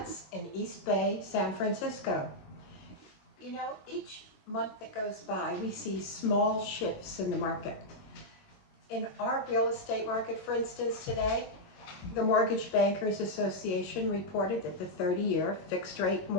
in East Bay, San Francisco. You know, each month that goes by, we see small shifts in the market. In our real estate market, for instance, today, the Mortgage Bankers Association reported that the 30-year fixed-rate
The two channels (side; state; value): right; late; 22 ms